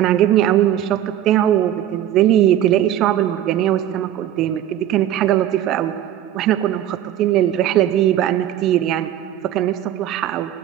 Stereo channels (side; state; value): left; quieter; 11.7 dB